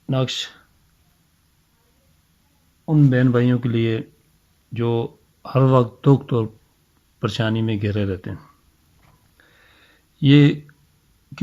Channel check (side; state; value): both; identical; correlation 1.00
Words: नक्श उन बहन भाइयों के लिए जो हर वक्त दुख और परेशानी में घिरे रहते हैं। ये